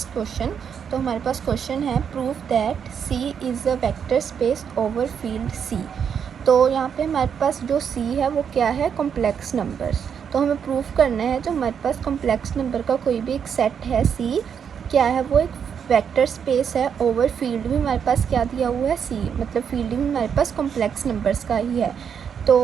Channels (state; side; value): quieter; left; 7.5 dB